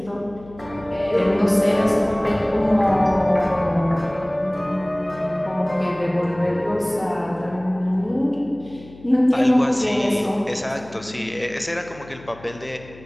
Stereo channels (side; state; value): left; noise; hum, 21 dB below the sound